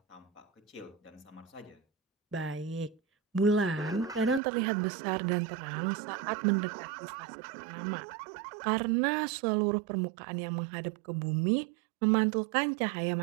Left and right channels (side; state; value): left; drops out; at 4.4 s